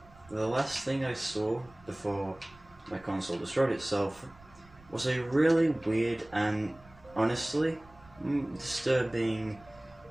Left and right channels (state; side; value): noise; right; rumble, 25 dB below the sound